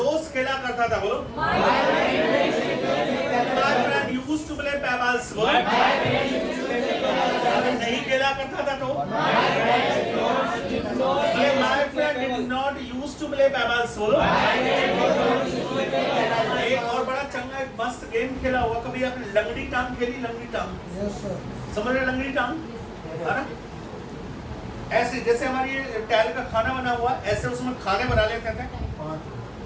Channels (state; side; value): identical; both; correlation 1.00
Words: दोस्त खेला करता था, बोलो। My friend used to play pebbles, बोलो। नहीं खेला करता था तो my friend did not used to play pebbles, बोलो। एक और बड़ा चंगा एक मस्त गेम खेला हुआ, कभी आपने लंगड़ी टांग खेली? लंगड़ी टांग समझ रहे? लंगड़ी टांग है ना, ऐसे जैसे हमारी टैल का खाना बना हुआ, ऐसे उसमें खाने बना लेते थे।